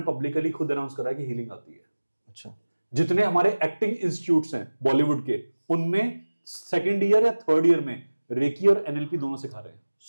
पब्लिकली खुद अनाउंस करा कि हीलिंग आती है। अच्छा। जितने हमारे एक्टिंग इंस्टीट्यूट्स हैं बॉलीवुड के, उनमें सेकेंड ईयर या थर्ड ईयर में रेकी और एनएलपी दोनों सिखा रहे हैं।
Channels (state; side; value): inverted; both; correlation -1.00